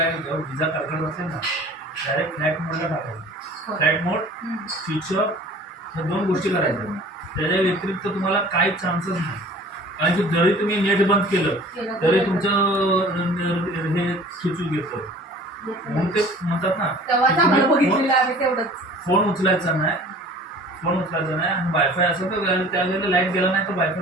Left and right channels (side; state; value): both; normal; correlation 0.47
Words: विजा कडकड असेल ना डायरेक्ट फ्लॅट मोडला टाकायचं. फ्लॅट मोड स्विच ऑफ ह्या 2 गोष्टी करायच्या. त्याच्या व्यतिरिक्त तुम्हाला काहीच चान्सच नाही. कारण की जरी तुम्ही नेट बंद केलं तरी तुमचं हे सुचू घेतं. म्हणून ते म्हणतात ना फोन उचलायचा नाही आणि वायफाय असं तर त्यावेळेला लाईट गेला नाही तर वायफाय